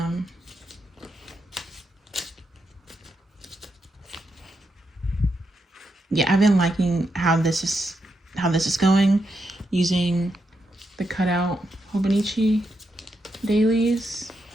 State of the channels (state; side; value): normal; both; correlation 0.83